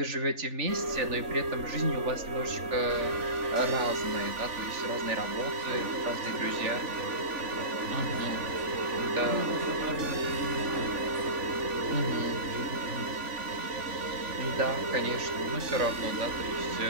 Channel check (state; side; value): late; left; 3.5 ms